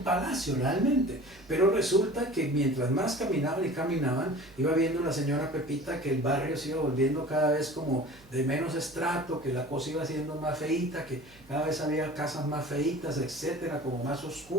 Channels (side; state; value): right; noise; hum, 26 dB below the sound